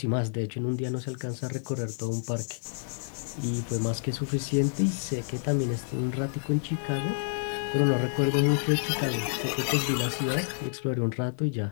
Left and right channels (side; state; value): right; silent; 59 dB below the other